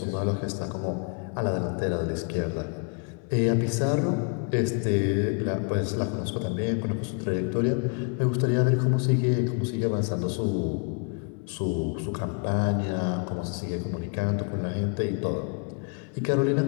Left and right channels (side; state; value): right; quieter; 38.1 dB